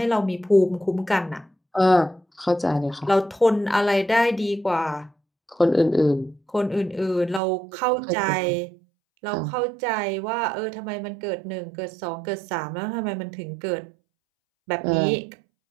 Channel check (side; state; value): left; drops out; at 7.4 s